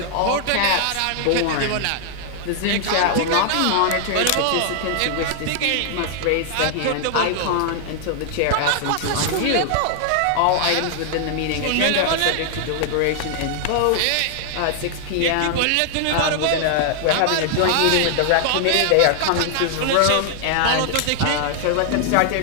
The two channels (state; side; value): different; both; correlation 0.00